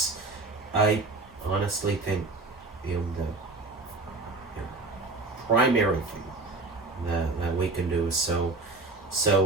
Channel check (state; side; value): quieter; left; 3.4 dB